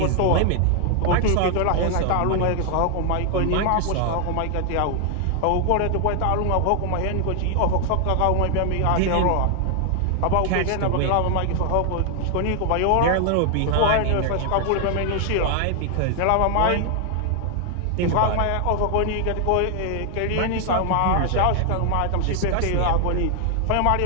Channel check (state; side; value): different; both; correlation 0.00